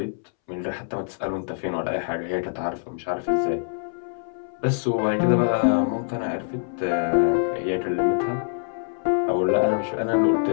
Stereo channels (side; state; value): right; silent; 62 dB below the other